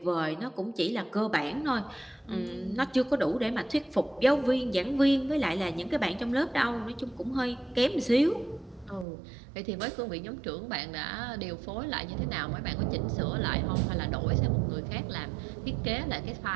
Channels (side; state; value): left; drops out; at 9.1 s